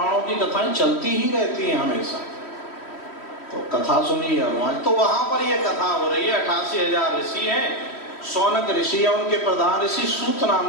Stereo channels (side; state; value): right; late; 3.1 ms